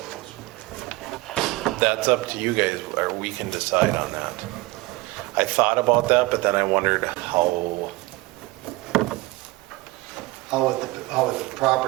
or whatever? that's up to you guys, or we can decide on that. I thought about that, but then I wondered how, How would the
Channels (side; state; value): left; quieter; 21.2 dB